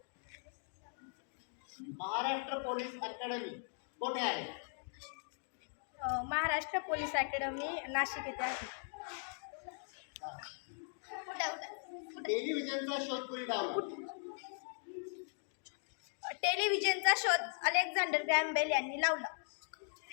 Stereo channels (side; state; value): right; silent; 52 dB below the other